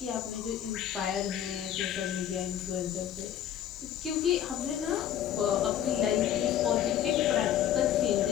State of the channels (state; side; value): quieter; right; 10.4 dB